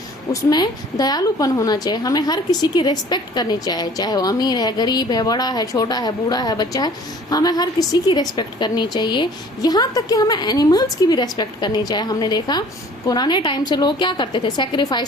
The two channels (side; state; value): both; normal; correlation 0.51